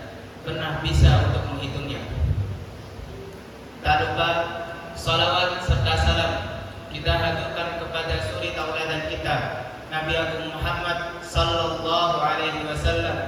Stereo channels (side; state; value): both; identical; correlation 1.00